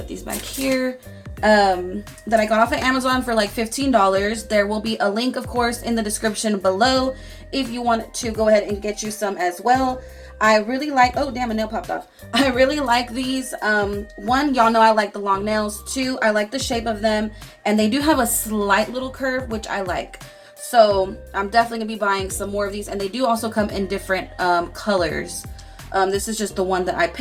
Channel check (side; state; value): both; identical; correlation 1.00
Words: these back here. That I got off of Amazon for like $15. There will be a link, of course, in the description below if you want to go ahead and get you some as well. I really like, oh damn, a nail popped off. I really like these. One, y'all know I like the long nails. Two, I like the shape of them, and they do have a slight little curve, which I like. So I'm definitely gonna be buying some more of these, and they do also come in different colors. This is just the one that I